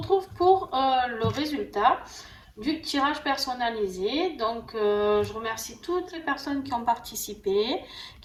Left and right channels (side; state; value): both; identical; correlation 1.00